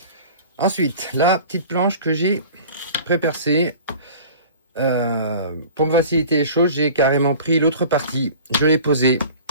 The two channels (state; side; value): inverted; both; correlation -0.42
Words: Ensuite, la petite planche que j'ai pré-percée. Pour me faciliter les choses, j'ai carrément pris l'autre partie. Je l'ai posée.